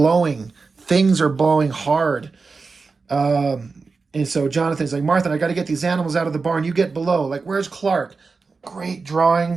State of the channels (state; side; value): quieter; left; 4.4 dB